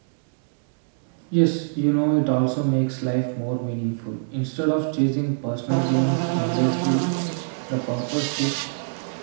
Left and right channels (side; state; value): left; silent; digital silence